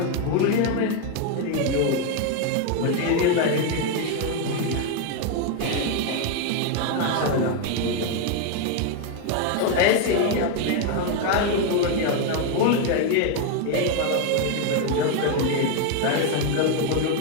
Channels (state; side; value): different; both; correlation 0.01